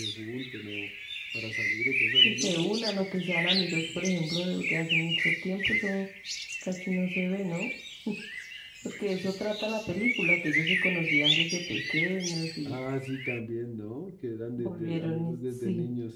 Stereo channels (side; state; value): both; identical; correlation 1.00